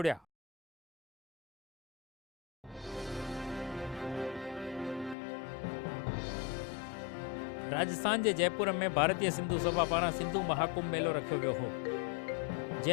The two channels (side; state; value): right; drops out; at 5.2 s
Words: राजस्थान के जयपुर में भारतीय सिंधु सभा पारां सिंधु महाकुंभ मेलो रखियो वियो हो,